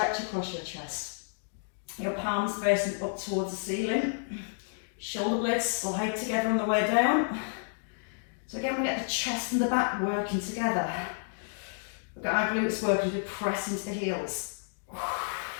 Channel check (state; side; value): silent; right; digital silence